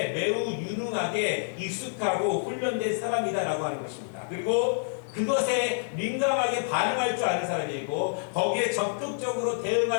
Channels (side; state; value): right; silent; 59 dB below the other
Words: 매우 유능하게 익숙하고 훈련된 사람이다라고 하는 것입니다. 그리고 그것에 민감하게 반응할 줄 아는 사람이고 거기에 적극적으로